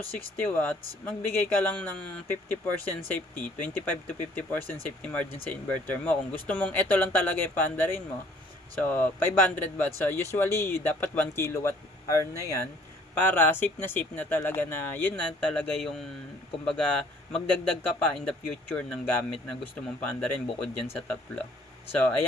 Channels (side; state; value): both; normal; correlation 0.58